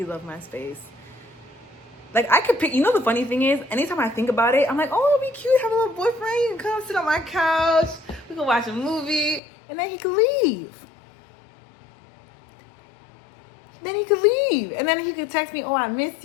love my space. Like, I could pick, the funny thing is, anytime I think about it, I'm like, oh, it'll be cute, have a little boyfriend, he can come sit on my couch, we can watch a movie, and then he could leave. Then he could leave. And then he could text me, oh, I miss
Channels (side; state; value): right; drops out; at 9.4 s